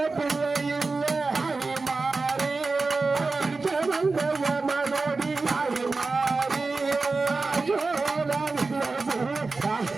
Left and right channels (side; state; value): left; quieter; 3.8 dB